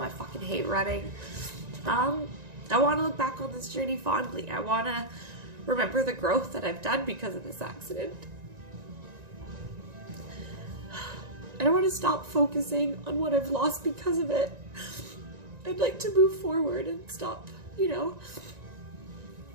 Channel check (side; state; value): left; late; 1.9 ms